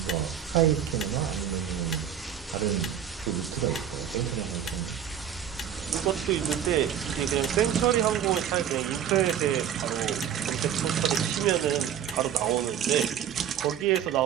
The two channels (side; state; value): left; quieter; 9.3 dB